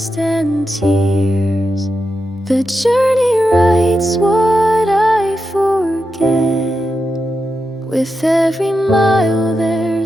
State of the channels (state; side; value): normal; both; correlation 0.88